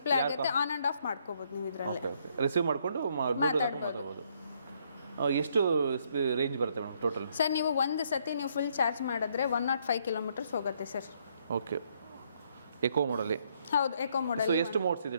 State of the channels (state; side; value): inverted; both; correlation -0.70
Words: ಆಗುತ್ತೆ, ಆನ್ ಅಂಡ್ ಆಫ್ ಮಾಡ್ಕೋಬಹುದು ನೀವು ಇದರಲ್ಲಿ. ಓಕೆ. ರಿಸೀವ್ ಮಾಡ್ಕೊಂಡು ಮಾತಾಡಬಹುದು. ಎಷ್ಟು ರೇಂಜ್ ಬರುತ್ತೆ ಮೇಡಮ್ ಟೋಟಲ್? ಸರ್, ನೀವು ಒಂದು ಸತಿ ನೀವು ಫುಲ್ ಚಾರ್ಜ್ ಮಾಡಿದ್ರೆ 105 ಕಿಲೋಮೀಟರ್ಸ್ ಹೋಗುತ್ತೆ ಸರ್. ಓಕೆ. ಎಕೋ ಮೋಡಲ್ಲಿ? ಹೌದು, ಎಕೋ ಮೋಡಲ್. ಸೊ ಎಷ್ಟು ಮೋಡ್ಸ್